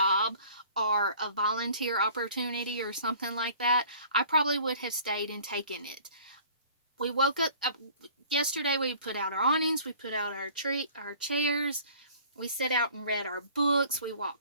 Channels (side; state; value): both; inverted; correlation -0.50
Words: or a volunteer opportunity or something like that, I probably would have stayed and taken it. We woke up yesterday. We put out our awnings, we put out our chairs, we sat out and read our books, we